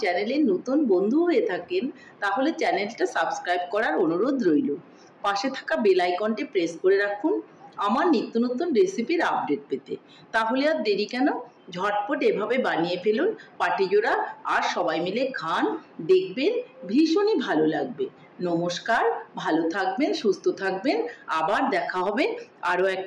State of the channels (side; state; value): both; identical; correlation 1.00